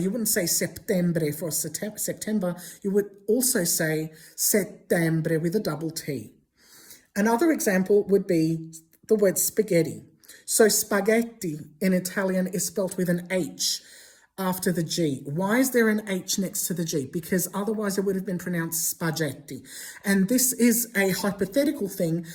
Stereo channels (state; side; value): identical; both; correlation 1.00